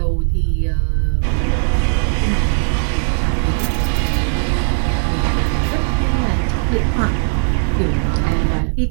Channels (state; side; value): silent; left; 67 dB below the other